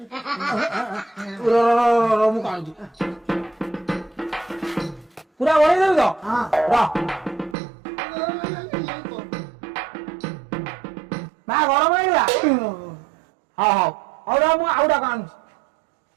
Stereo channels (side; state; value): left; drops out; at 7.6 s